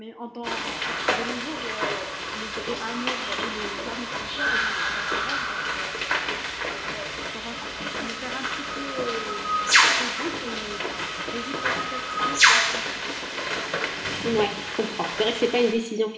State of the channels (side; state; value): both; identical; correlation 1.00